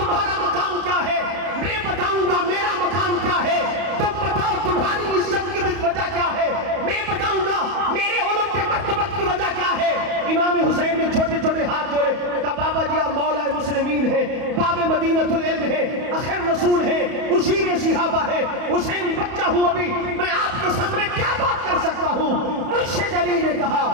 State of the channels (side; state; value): left; late; 31 ms